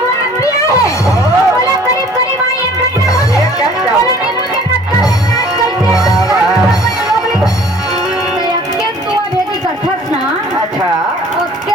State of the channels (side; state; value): both; normal; correlation 0.52